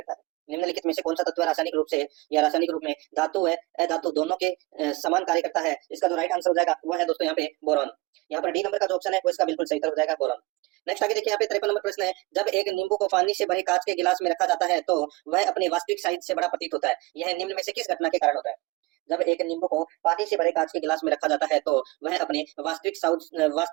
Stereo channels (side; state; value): left; quieter; 22.4 dB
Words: है। निम्नलिखित में से कौन सा तत्व रासायनिक रूप से या रासायनिक रूप में धातु व अधातु दोनों के समान कार्य करता है, इसका जो राइट आंसर हो जाएगा वो है दोस्तों यहाँ पे बोरॉन। यहाँ पर डी नंबर का जो ऑप्शन है वो इसका बिल्कुल सही उत्तर हो जाएगा, बोरॉन। नेक्स्ट आगे देखिए, यहाँ पे 53 नंबर प्रश्न है, जब एक नींबू को पानी से भरे कांच के गिलास में रखा जाता है तो वह अपने वास्तविक साइज से बड़ा प्रतीत होता है, यह निम्न में से किस घटना के कारण होता है। जब एक नींबू को पानी से भरे कांच के गिलास में रखा जाता है तो वह अपने वास्तविक